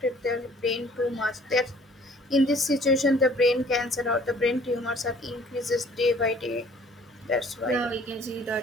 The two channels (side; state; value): both; normal; correlation 0.55